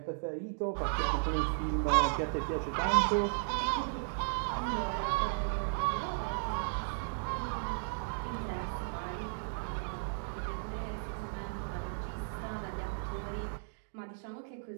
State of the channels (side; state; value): left; silent; digital silence